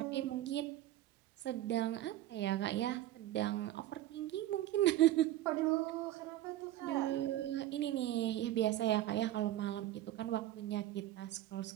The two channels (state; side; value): quieter; left; 14.0 dB